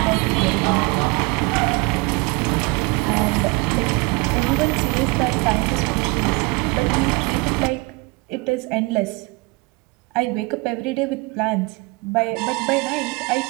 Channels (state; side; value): quieter; left; 26.3 dB